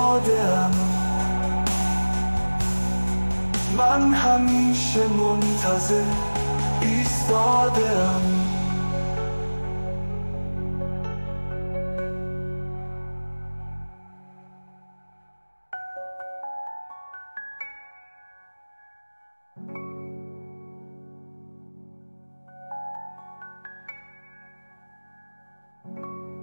من همیشه منتظر ایستاده‌ام.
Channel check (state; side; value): inverted; both; correlation -1.00